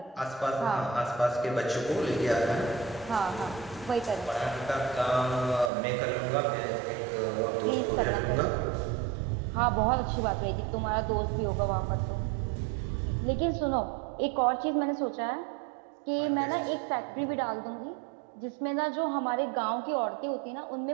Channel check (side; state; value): left; drops out; at 5.7 s